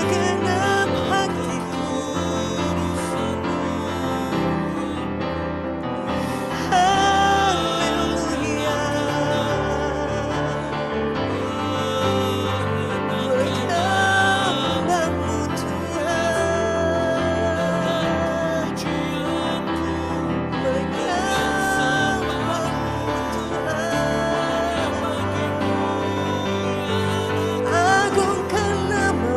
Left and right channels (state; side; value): identical; both; correlation 1.00